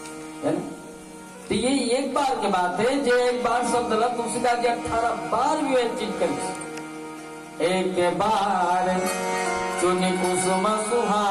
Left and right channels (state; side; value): identical; both; correlation 1.00